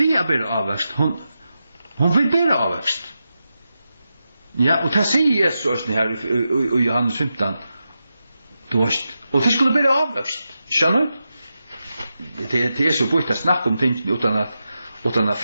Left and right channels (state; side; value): inverted; both; correlation -0.89